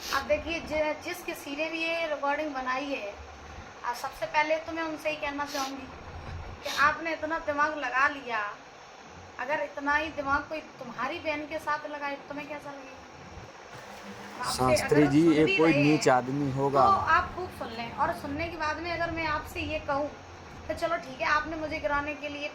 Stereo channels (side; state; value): both; identical; correlation 1.00